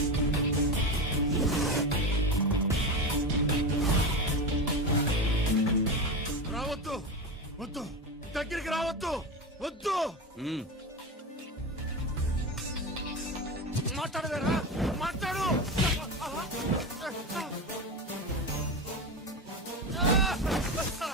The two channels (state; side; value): normal; both; correlation 0.21